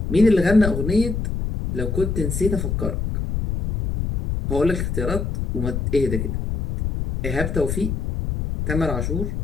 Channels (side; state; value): left; noise; rumble, 2 dB below the sound